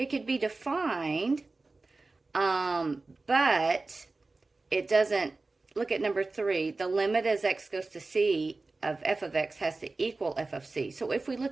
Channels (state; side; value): quieter; left; 3.5 dB